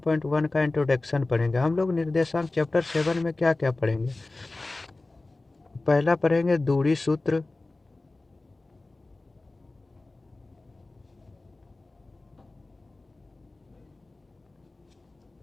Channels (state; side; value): quieter; right; 3.1 dB